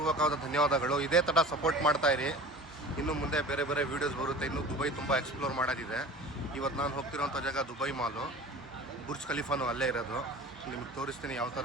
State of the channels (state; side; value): normal; both; correlation 0.39